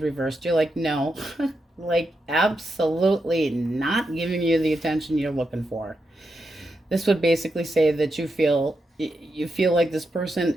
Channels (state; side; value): normal; both; correlation 0.85